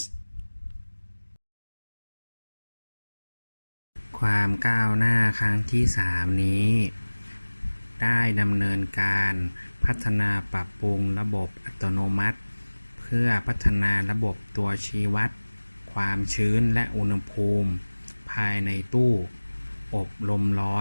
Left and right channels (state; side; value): inverted; both; correlation -1.00